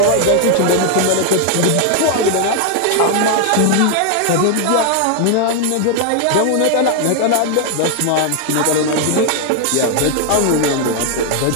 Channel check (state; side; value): different; both; correlation 0.01